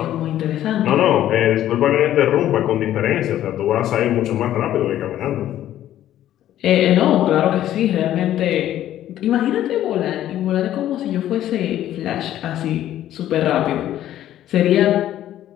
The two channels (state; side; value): quieter; right; 12.4 dB